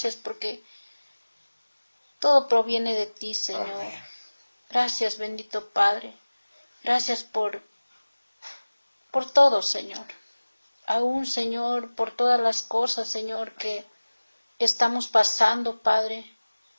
porque todo proviene de ti, Señor. Amén. Gracias, bendito Padre. Gracias por todo, Señor. Aún, Señor, por todas las cosas, Señor, que estamos pasando, Padre.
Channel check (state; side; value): inverted; both; correlation -1.00